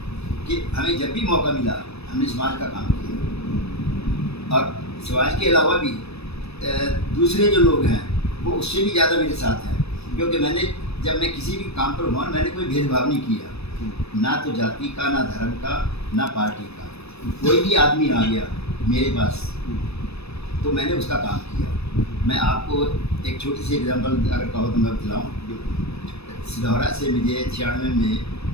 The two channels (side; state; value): right; late; 0.79 ms